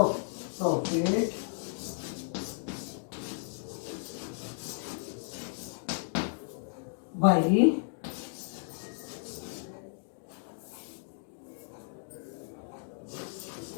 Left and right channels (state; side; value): silent; right; digital silence